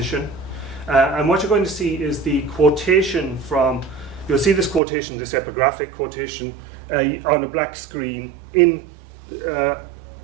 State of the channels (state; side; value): drops out; left; at 4.8 s